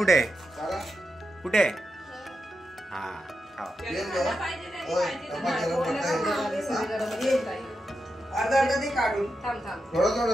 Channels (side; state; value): both; normal; correlation 0.87